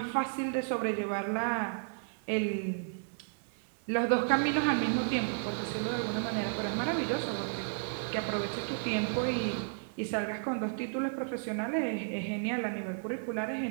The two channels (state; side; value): silent; left; 56 dB below the other